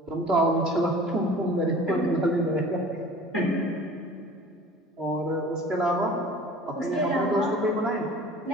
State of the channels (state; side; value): normal; both; correlation 0.44